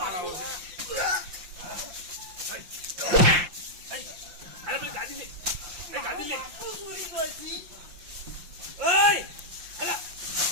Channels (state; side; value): late; left; 5.7 ms